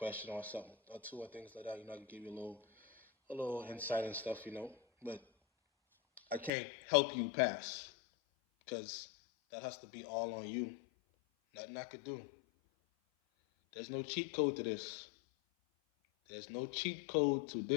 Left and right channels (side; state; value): right; drops out; at 6.5 s